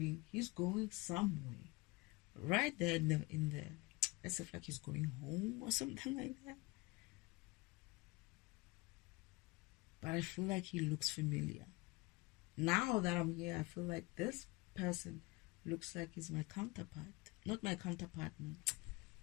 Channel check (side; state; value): right; quieter; 23.7 dB